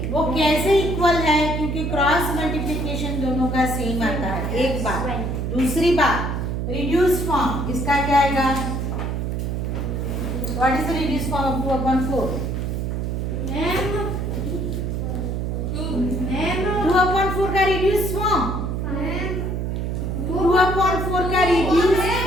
वो कैसे इक्वल है? क्योंकि क्रॉस मल्टीप्लिकेशन दोनों का सेम आता है। एक बात। दूसरी बात, रिड्यूस फॉर्म इसका क्या आएगा? What is the reduce form of 2/4? 2/4 का रिड्यूस फॉर्म, 2/4 का रिड्यूस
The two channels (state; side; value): noise; right; hum, 2 dB below the sound